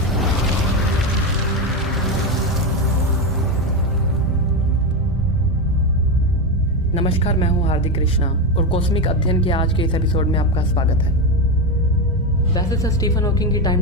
नमस्कार, मैं हूँ हार्दिक कृष्णा और कॉस्मिक अध्ययन के आज के इस एपिसोड में आपका स्वागत है। वैसे सर स्टीफन हॉकिंग की टाइम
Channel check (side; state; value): both; normal; correlation 0.13